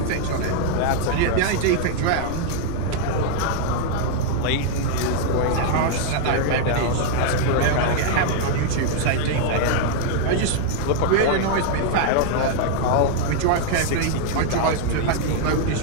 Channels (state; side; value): different; both; correlation 0.00